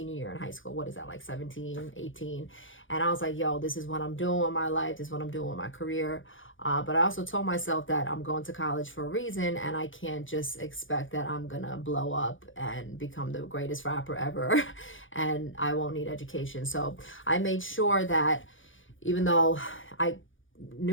year in high school. What is that, like 17, 18? And I was like, yo, this is what I'm doing with my life. This is what I'm doing with my career. But I also told myself that I'm going to college for a reason, and I can't just expect that I'm going to blow up and become the greatest rapper ever and I won't need education. So I made sure that even though I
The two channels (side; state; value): right; late; 0.57 ms